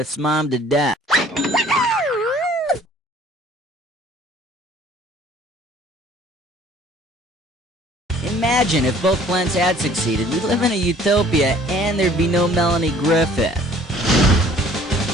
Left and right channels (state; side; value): normal; both; correlation 0.54